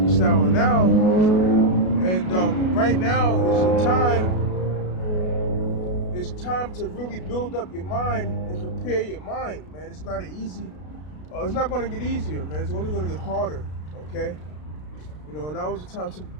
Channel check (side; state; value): right; late; 33 ms